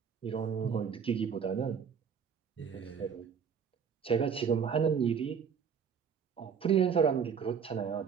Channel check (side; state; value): left; quieter; 6.9 dB